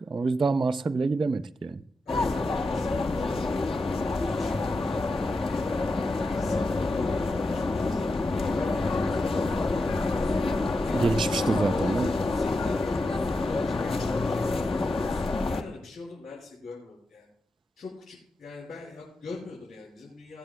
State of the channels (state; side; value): normal; both; correlation 0.87